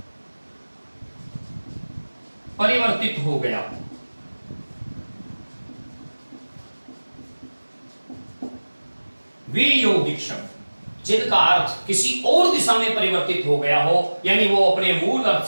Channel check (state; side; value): inverted; both; correlation -1.00